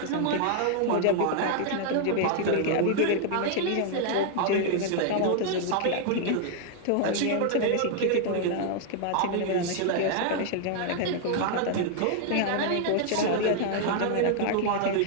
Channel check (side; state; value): both; different; correlation 0.00